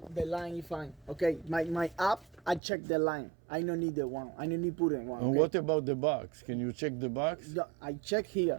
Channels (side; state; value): left; drops out; at 2.6 s